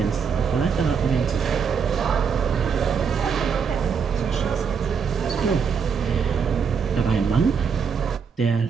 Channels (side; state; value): left; quieter; 6.3 dB